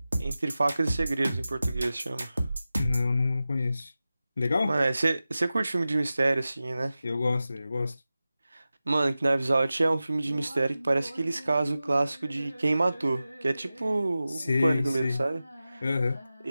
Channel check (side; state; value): both; inverted; correlation -0.94